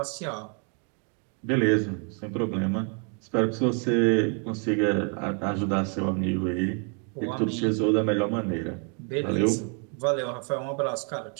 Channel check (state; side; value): quieter; left; 39.5 dB